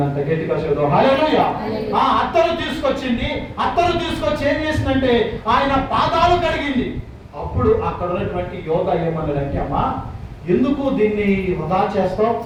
గట్టిగా చదువు హల్లెలూయా. ఆ అత్తరు తీసుకొచ్చి ఏం చేసిందంటే ఆయన పాదాలు కడిగింది. అప్పుడు అక్కడ ఉన్నటువంటి యోధ ఏమన్నాడంటే, అమ్మా ఎందుకు దీన్ని వృధా చేస్తావు?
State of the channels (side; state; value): both; identical; correlation 1.00